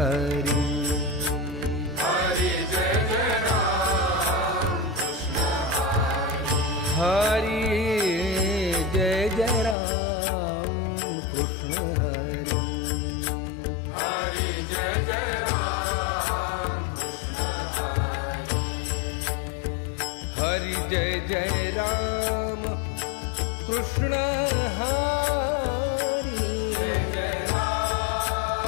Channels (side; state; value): right; drops out; at 9.8 s